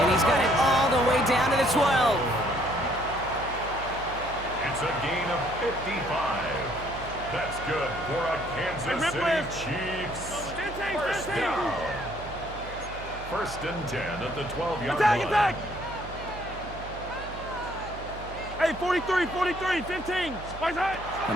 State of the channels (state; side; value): noise; right; hum, 13 dB below the sound